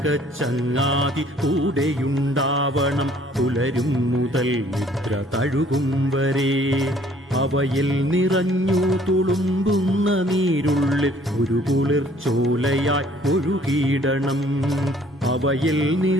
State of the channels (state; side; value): normal; both; correlation 0.58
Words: കൂടെയുണ്ടാവണം, പുലരും മുതൽ നിദ്ര തഴുകും വരെ. അവയിൽ നിറഞ്ഞു തുളുമ്പുന്ന നീരുള്ളിൽ ഒരു കുളിർച്ചോലയായി ഒഴുകിയിടണം. അവയിൽ